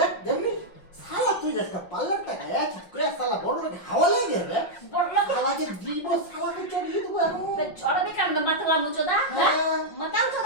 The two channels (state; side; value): late; right; 5.5 ms